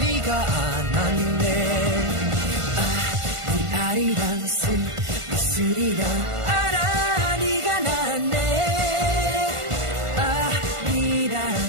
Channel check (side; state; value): left; late; 1.5 ms